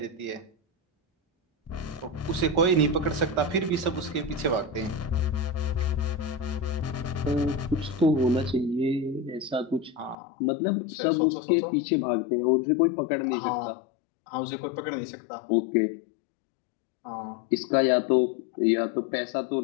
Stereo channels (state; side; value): drops out; right; at 10.2 s